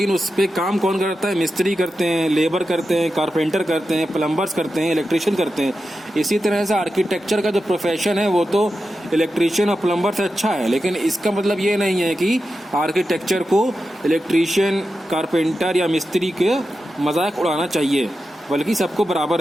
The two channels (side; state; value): both; normal; correlation 0.91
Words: उस पर काम कौन करता है, मिस्त्री करते हैं, लेबर करते हैं, कारपेंटर करते हैं, प्लम्बर्स करते हैं, इलेक्ट्रिशियन करते हैं। इसी तरह से आर्किटेक्चर का जो प्रोफेशन है वो तो इलेक्ट्रिशियन और प्लम्बर से अच्छा है, लेकिन इसका मतलब ये नहीं है कि आर्किटेक्चर को इलेक्ट्रिशियन, कारपेंटर या मिस्त्री के मजाक उड़ाना चाहिए, बल्कि सबको बराबर